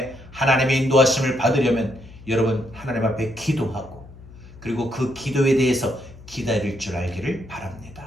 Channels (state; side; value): noise; left; hum, 19 dB below the sound